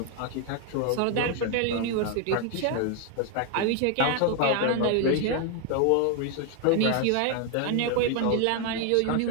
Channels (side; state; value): both; different; correlation 0.01